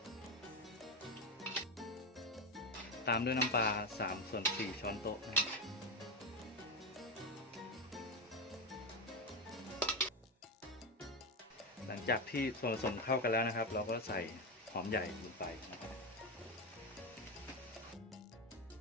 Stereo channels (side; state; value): both; normal; correlation 0.12